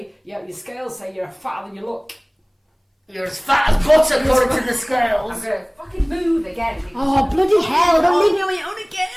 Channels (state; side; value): identical; both; correlation 1.00